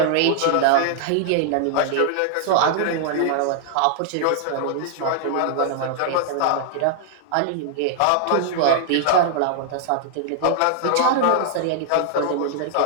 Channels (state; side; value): different; both; correlation -0.01